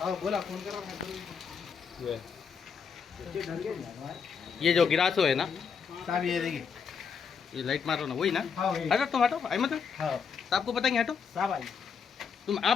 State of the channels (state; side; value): quieter; right; 6.3 dB